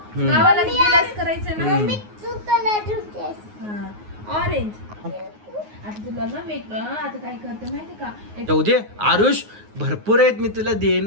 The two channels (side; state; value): left; late; 9.5 ms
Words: गावाला गेलास करायचं ना. तू कलर ठेवतेस. ऑरेंज. आता तुला ना आता काय करते माहिती का जाऊ दे आरुष, भरपूर आहेत, मी तुला